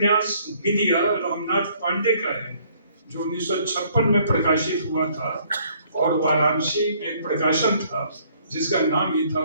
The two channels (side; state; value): both; inverted; correlation -0.62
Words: विद्या रामनाथ पांडे का है, जो 1956 में प्रकाशित हुआ था, और वाराणसी में एक प्रकाशन था जिसका नाम ही था